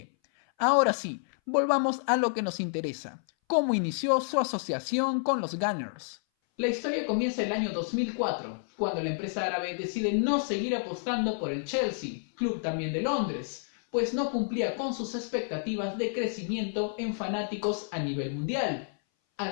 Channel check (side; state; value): right; silent; 58 dB below the other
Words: Ahora sí, volvamos a lo que nos interesa. ¿Cómo inició su asociación con los Gunners? La historia comienza el año 2004, cuando la empresa árabe decide no seguir apostando por el Chelsea, club también de Londres, pues no cumplía con sus expectativas de crecimiento en fanáticos a nivel mundial.